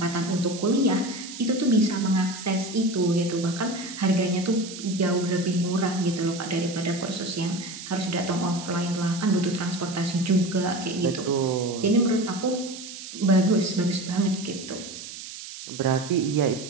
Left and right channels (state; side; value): noise; right; hiss, 12 dB below the sound